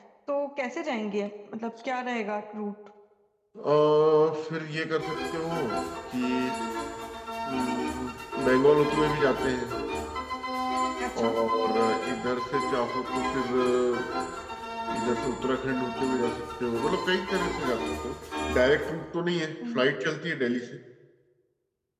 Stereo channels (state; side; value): identical; both; correlation 1.00